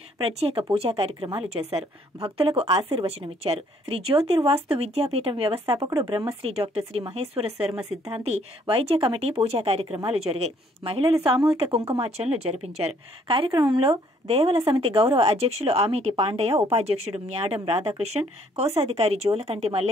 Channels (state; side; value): normal; both; correlation 0.64